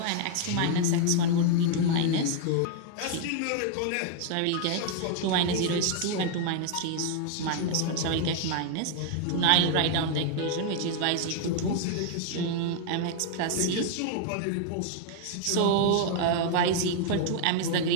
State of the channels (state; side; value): different; both; correlation 0.00